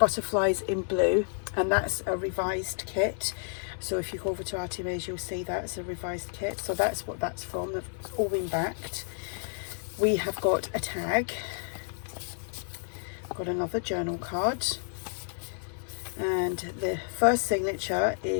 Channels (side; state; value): right; silent; digital silence